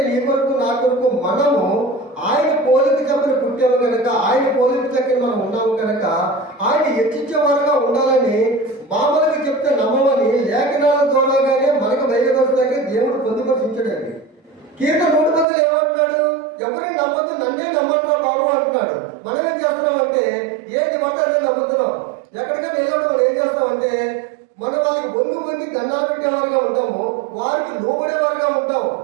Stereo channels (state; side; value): drops out; left; at 15.5 s